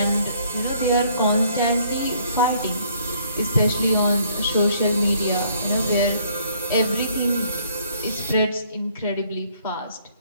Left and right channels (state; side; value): inverted; both; correlation -0.63